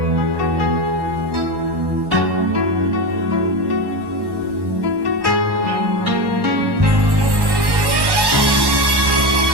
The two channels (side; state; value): left; late; 1.1 ms